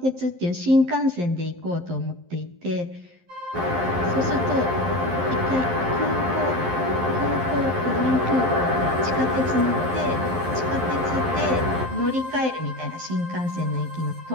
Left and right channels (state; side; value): late; left; 11 ms